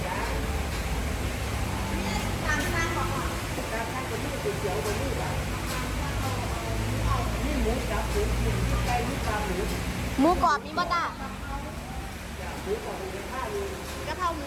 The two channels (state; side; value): identical; both; correlation 1.00